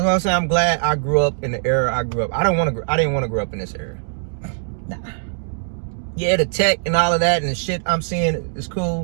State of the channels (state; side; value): silent; left; digital silence